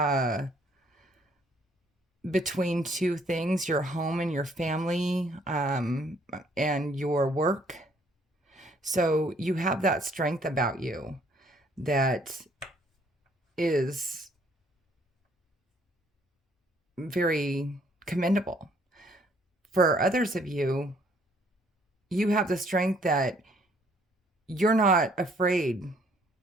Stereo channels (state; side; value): normal; both; correlation 0.64